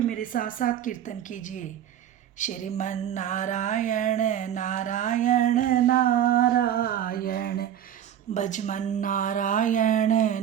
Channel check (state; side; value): quieter; left; 10.3 dB